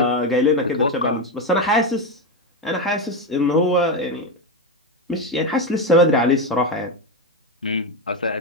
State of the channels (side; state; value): both; normal; correlation 0.11